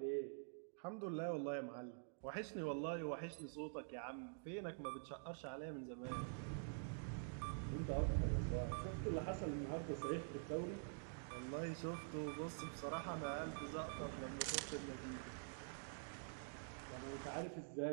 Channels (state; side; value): silent; left; digital silence